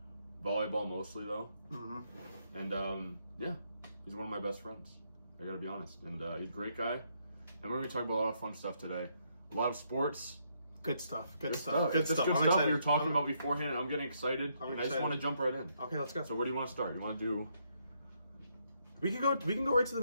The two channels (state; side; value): inverted; both; correlation -0.75